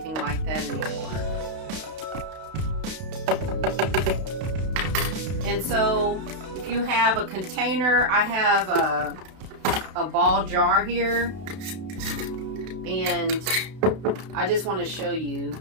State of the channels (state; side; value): late; left; 32 ms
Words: like that anymore. And so if you have a container, I have a ball jar here, and I just want to show you,